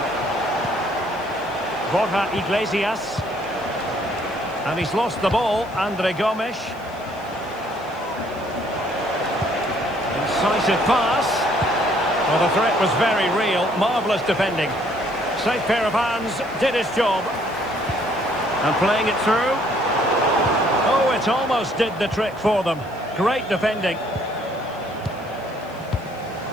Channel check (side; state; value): left; noise; hiss, 27 dB below the sound